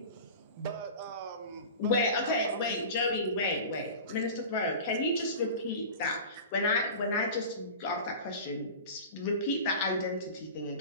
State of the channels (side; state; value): both; inverted; correlation -0.34